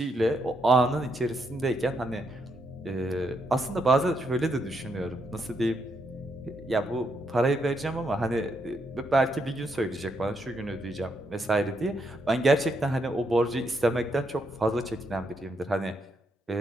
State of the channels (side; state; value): both; normal; correlation 0.78